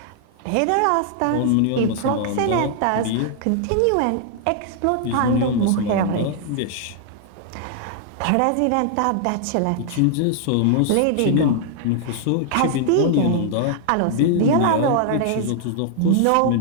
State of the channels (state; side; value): different; both; correlation 0.00